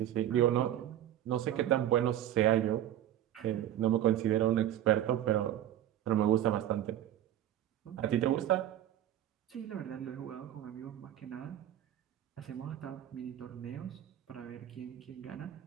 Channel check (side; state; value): left; quieter; 11.8 dB